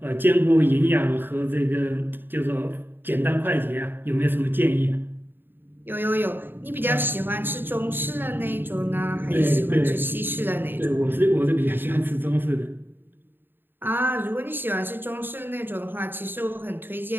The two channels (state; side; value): late; left; 0.097 ms